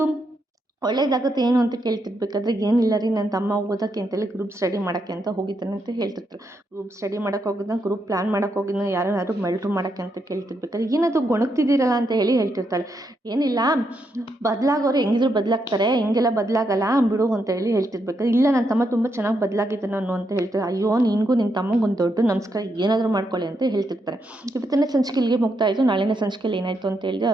ಒಳ್ಳೇದಾಗುತ್ತೆ ಏನು ಅಂತ ಕೇಳ್ತಿರ್ಬೇಕಾದ್ರೆ, ಏನಿಲ್ಲ ರೀ ನನ್ನ ತಮ್ಮ ಓದೋಕ್ಕೆ ಅಂತೇಳಿ ಗ್ರೂಪ್ ಸ್ಟಡಿ ಮಾಡೋಕ್ಕೆ ಅಂತ ಹೋಗಿದ್ದಾನೆ ಅಂತ ಹೇಳ್ತಿರ್ತಾರೆ. ಗ್ರೂಪ್ ಸ್ಟಡಿ ಮಾಡೋಕ್ಕೆ ಹೋಗಿದ್ದ, ಗ್ರೂಪ್ ಪ್ಲ್ಯಾನ್ ಮಾಡೋಕ್ಕೆ ಹೋಗಿದ್ದ, ಯಾರು ಮಲ್ಟ್ರು ಮಾಡೋಕ್ಕೆ ಅಂತ ಕೇಳ್ತಿರ್ಬೇಕಾದ್ರೆ, ಏನದು ಗೊಣಗ್ತಿದ್ದೀರಲ್ಲ ಅಂತ ಹೇಳಿ ಹೇಳ್ತಿರ್ತಾಳೆ. ಏನಿಲ್ಲ, ಬದಲಾಗೋರು ಹೆಂಗಿದ್ರು ಬದಲಾಗ್ತಾರೆ, ಹಿಂಗೆಲ್ಲ ಬದಲಾಗಲ್ಲ ಬಿಡು ಅಂತ ಹೇಳಿ ಹೇಳ್ತಿರ್ಬೇಕಾದ್ರೆ, ಇಲ್ಲ ನನ್ನ ತಮ್ಮ ತುಂಬ ಚೆನ್ನಾಗಿ ಬದಲಾಗಿದ್ದ ನಾನು ಅಂತ ಹೇಳ್ತಾರೆ. ಅಯ್ಯೋ ನಿನಗೂ ನಿನ್ನ ತಮ್ಮಂಗೆ ಒಂದು ದೊಡ್ಡ ನಮಸ್ಕಾರ, ಏನಾದರೂ ಮಾಡ್ಕೊಳ್ಳಿ ಅಂತ ಹೇಳ್ತಿರ್ತಾರೆ. ಇವತ್ತಿನ ಸಂಚಿಕೆ ಇಲ್ಲಿಗೆ ಮುಗ್ತಾ ಇತ್ತು, ನಾಳಿನ ಸಂಚಿಕೆಯಲ್ಲಿ ಏನಾಯಿತು ಅಂತ ಹೇಳಿದ್ರೆ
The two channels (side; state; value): both; normal; correlation 0.80